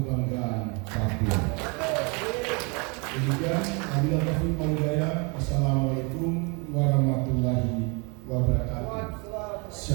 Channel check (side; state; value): left; quieter; 32.2 dB